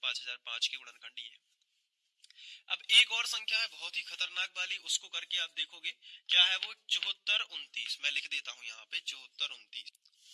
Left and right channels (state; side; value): identical; both; correlation 1.00